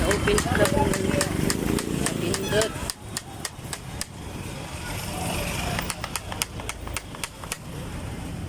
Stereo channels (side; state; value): both; identical; correlation 1.00